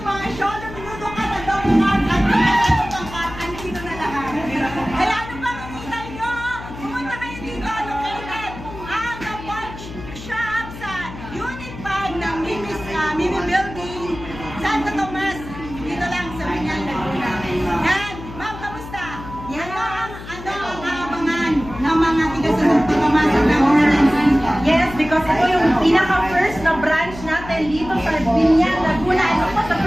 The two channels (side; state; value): left; noise; hum, 13 dB below the sound